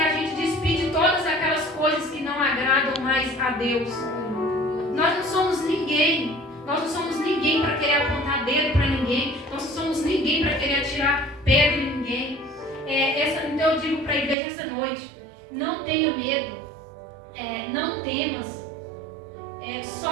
gente despir de todas aquelas coisas que não agradam mais a Deus. Nós não somos ninguém para querer apontar dedo para ninguém, nós não somos ninguém para querer atirar pedra em ninguém. Então eu digo para a igreja essa noite: não tenha medo, não temas,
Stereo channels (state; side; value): drops out; left; at 14.4 s